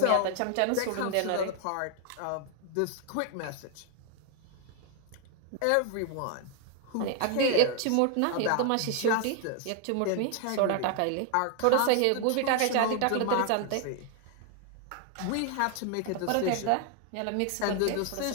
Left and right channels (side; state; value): both; different; correlation 0.00